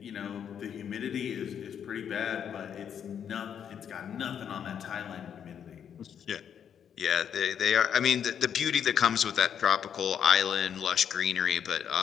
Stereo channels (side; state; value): right; quieter; 8.4 dB